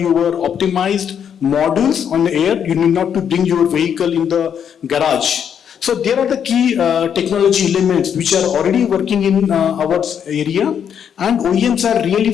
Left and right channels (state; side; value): quieter; right; 8.2 dB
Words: optimized modules on the air. You need not to bring your vehicle in the garage. So there are the key technology elements which are already working in our area, and OEMs are really